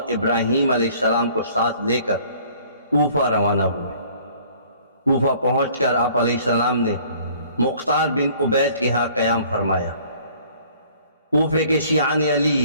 ابراہیم علیہ السلام کو ساتھ لے کر کوفہ روانہ ہوئے۔ کوفہ پہنچ کر آپ علیہ السلام نے مختار بن عبید کے ہاں قیام فرمایا۔ کوفے کے شیعان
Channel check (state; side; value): inverted; both; correlation -0.55